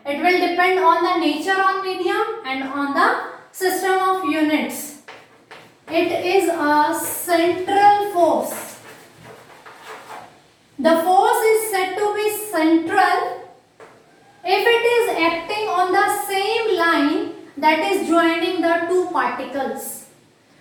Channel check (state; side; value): identical; both; correlation 1.00